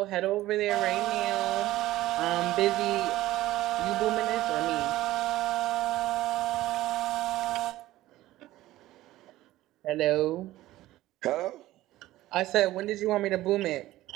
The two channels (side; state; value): left; quieter; 15.9 dB